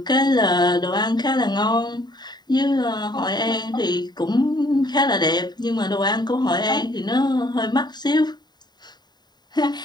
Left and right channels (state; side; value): late; right; 0.20 ms